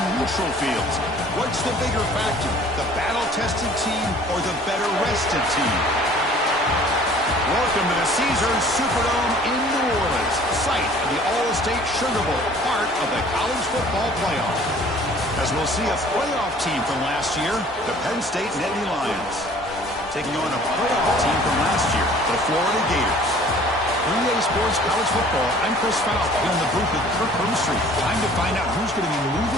neutral fields. What's the bigger factor, the battle-tested team or the better-rested team? Welcome to the Caesars Superdome in New Orleans, site of the All-State Sugar Bowl, part of the college football playoff. As we'll see a playoff team from last year, the Penn State Nittany Lions, taking on a playoff team from last year, the Florida Gators. 3A Sports College Football, I'm Chris Falk here in the booth with Kirk Hermstreet. Time to find out who's going to be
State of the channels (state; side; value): normal; both; correlation 0.52